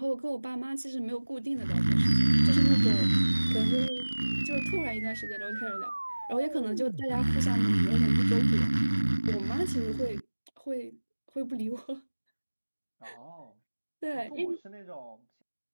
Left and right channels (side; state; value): both; inverted; correlation -1.00